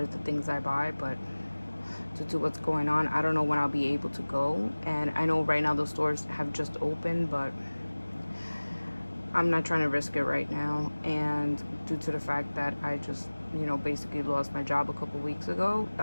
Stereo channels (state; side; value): inverted; both; correlation -1.00